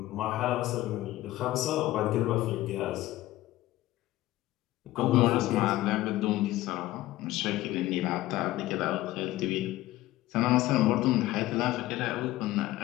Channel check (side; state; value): right; quieter; 16.3 dB